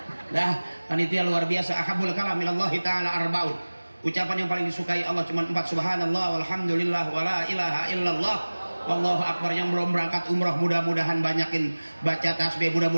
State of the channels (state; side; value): inverted; both; correlation -1.00